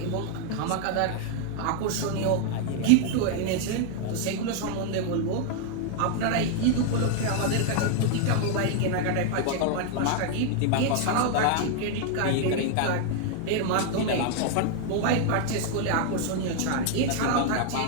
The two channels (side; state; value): both; different; correlation 0.00